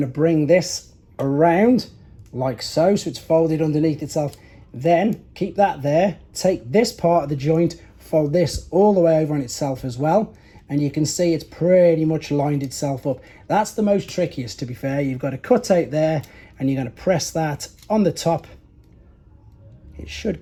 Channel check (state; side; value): identical; both; correlation 1.00